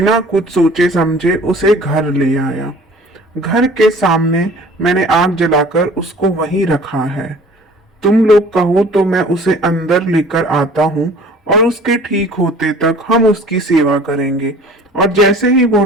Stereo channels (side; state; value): both; normal; correlation 0.48